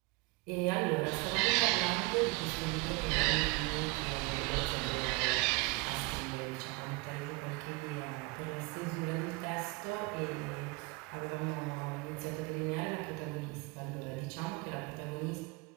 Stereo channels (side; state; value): left; quieter; 25.8 dB